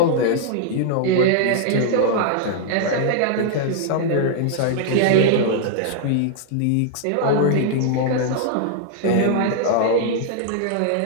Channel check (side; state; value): both; different; correlation -0.01